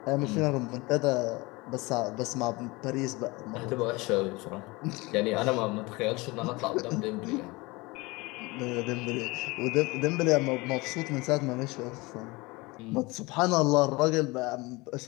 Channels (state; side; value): quieter; right; 23.7 dB